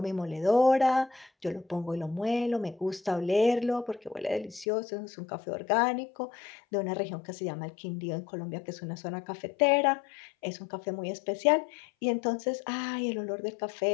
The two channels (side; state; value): right; drops out; at 4.7 s